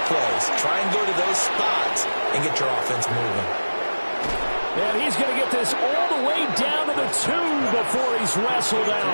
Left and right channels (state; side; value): inverted; both; correlation -1.00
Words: plays. Try and go to those spots and get your offense moving. And he's going to get this all the way down to the 2 before he's wrestled